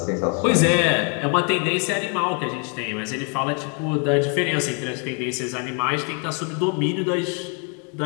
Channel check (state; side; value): quieter; right; 38.0 dB